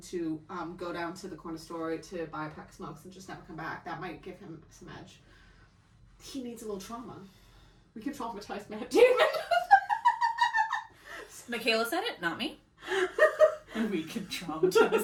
to go down to the corner store to buy a pack of smokes and just never come back. That might give him some edge. He needs a little trauma. We can traumatize Matt Damon. Michaela said it, not me. And we can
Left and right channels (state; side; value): identical; both; correlation 1.00